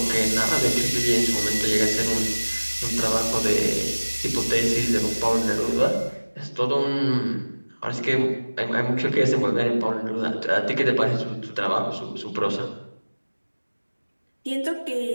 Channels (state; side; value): inverted; both; correlation -1.00